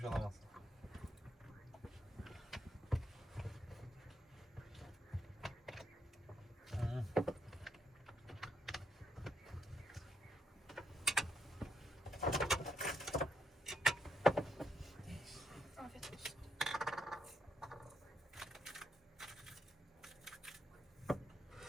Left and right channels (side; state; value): both; normal; correlation 0.78